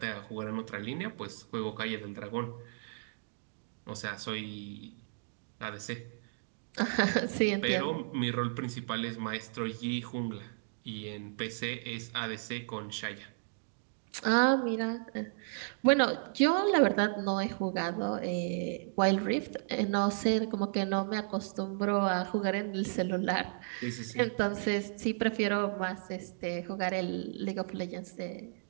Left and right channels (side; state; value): left; silent; digital silence